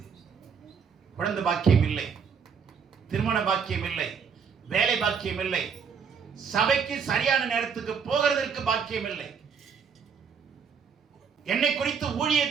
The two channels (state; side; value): quieter; left; 6.4 dB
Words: குழந்தை பாக்கியம் இல்லை, திருமண பாக்கியம் இல்லை, வேலை பாக்கியம் இல்லை, சபைக்கு சரியான நேரத்துக்கு போகிறதற்கு பாக்கியம் இல்லை, என்னை குறித்து